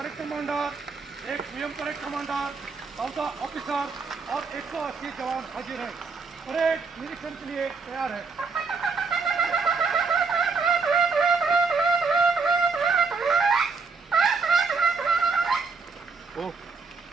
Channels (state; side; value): quieter; left; 4.7 dB